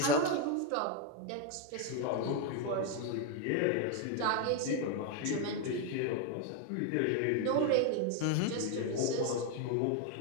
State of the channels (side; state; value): both; different; correlation 0.01